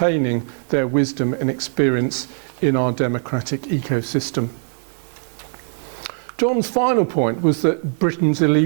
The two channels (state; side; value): silent; left; digital silence